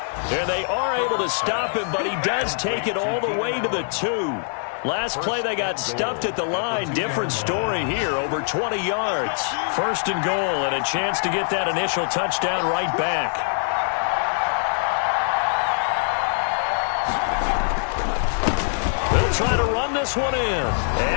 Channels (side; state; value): right; silent; digital silence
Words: And they are able to stop him, but he does take it all the way to the 2. Last play, they got stuffed at the line. Different story here, over 20 yards. 1st and goal, and a chance to get that initial touchdown right back. They'll try to run this one in.